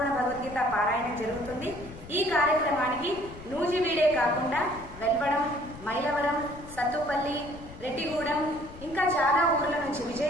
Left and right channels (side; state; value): left; noise; rumble, 16 dB below the sound